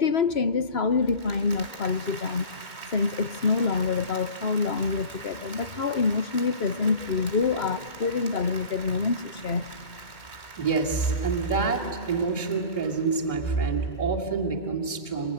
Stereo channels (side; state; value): right; late; 2.2 ms